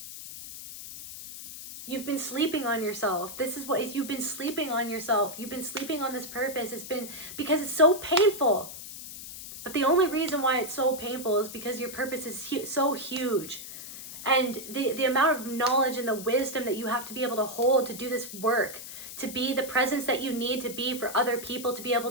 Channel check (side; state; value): left; noise; hiss, 11 dB below the sound